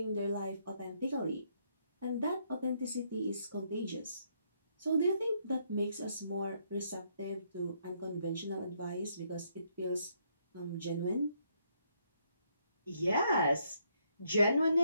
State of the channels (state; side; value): inverted; both; correlation -0.73